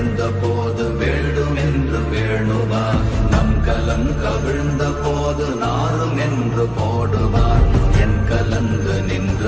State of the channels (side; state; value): both; identical; correlation 1.00